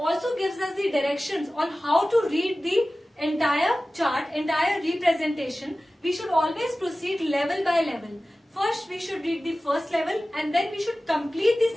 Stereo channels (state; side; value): normal; both; correlation 0.96